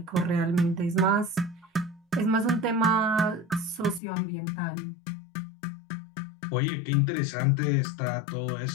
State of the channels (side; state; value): right; drops out; at 4.0 s